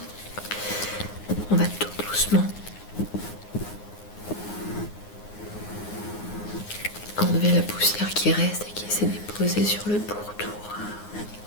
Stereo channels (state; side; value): late; right; 9.6 ms